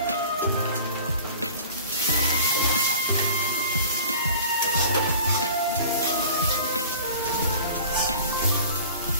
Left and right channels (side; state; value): both; inverted; correlation -0.42